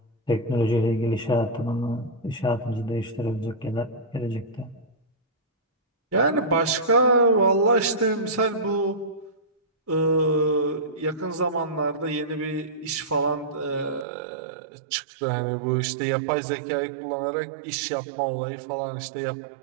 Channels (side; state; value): left; drops out; at 14.1 s